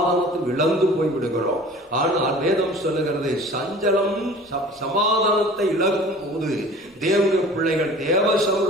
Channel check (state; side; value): normal; both; correlation 0.44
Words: இழந்து போய் விடுகிறோம். ஆனால் வேதம் சொல்லுகிறது, சஞ்சலம் சமாதானத்தை இழக்கும் போது தேவனுடைய பிள்ளைகள் தேவ